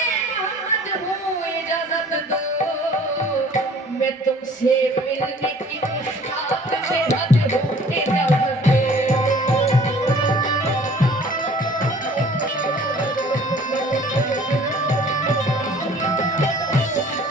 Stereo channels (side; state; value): both; normal; correlation 0.52